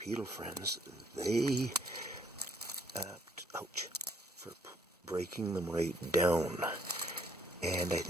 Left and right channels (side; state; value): both; normal; correlation 0.66